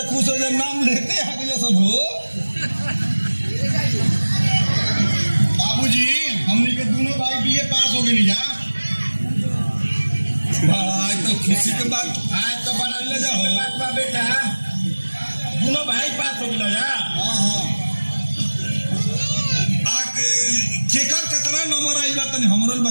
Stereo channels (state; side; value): inverted; both; correlation -1.00